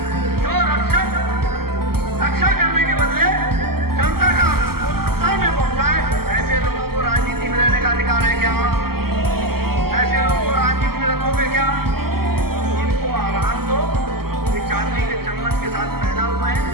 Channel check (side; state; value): left; late; 0.95 ms